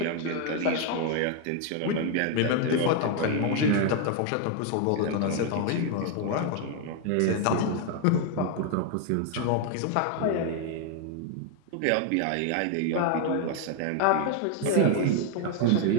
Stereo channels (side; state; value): both; different; correlation 0.01